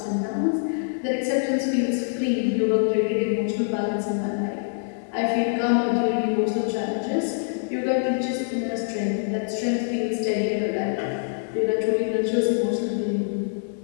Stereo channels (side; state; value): right; silent; digital silence